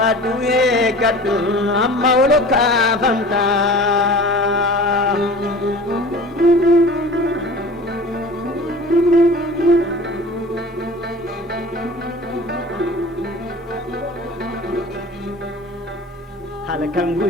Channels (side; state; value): both; normal; correlation 0.40